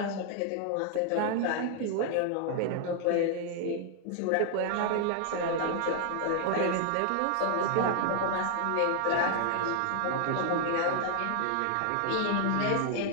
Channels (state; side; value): different; both; correlation 0.00